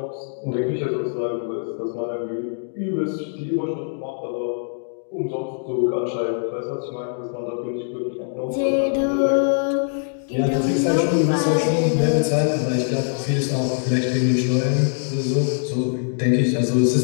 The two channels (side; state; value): right; silent; digital silence